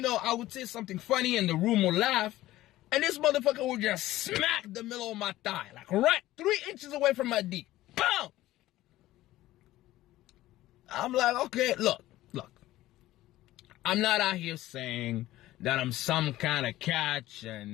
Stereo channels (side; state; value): right; quieter; 15.8 dB